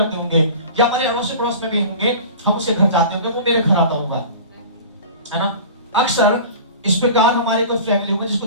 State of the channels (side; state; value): both; inverted; correlation -0.38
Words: होंगे, या हमारे अड़ोस पड़ोस में भी होंगे, हम उसके घर जाते होंगे, वो मेरे घर आता होगा, है ना? अक्सर इस प्रकार हमारे कोई फैमिली होगा जिसको